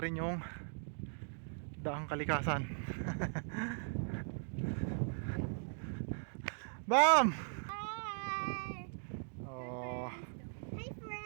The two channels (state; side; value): silent; left; digital silence